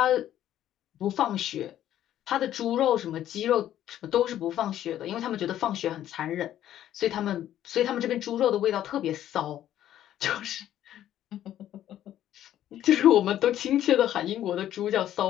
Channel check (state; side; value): quieter; right; 11.9 dB